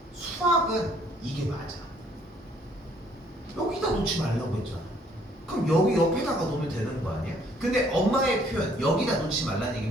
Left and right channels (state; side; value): normal; both; correlation 0.62